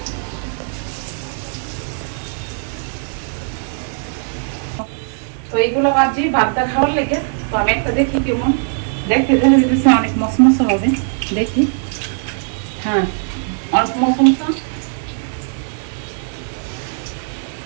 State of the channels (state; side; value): silent; left; digital silence